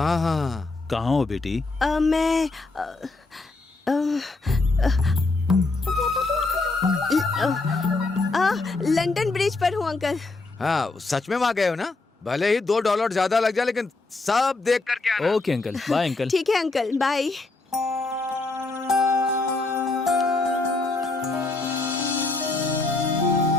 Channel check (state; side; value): quieter; right; 3.4 dB